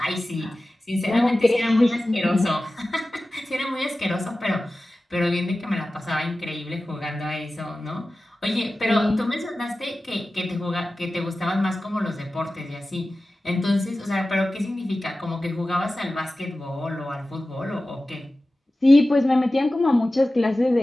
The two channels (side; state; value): both; normal; correlation 0.95